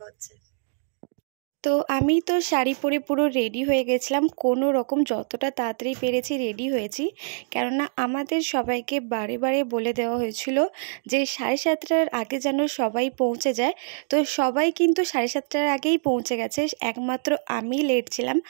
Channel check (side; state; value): left; silent; digital silence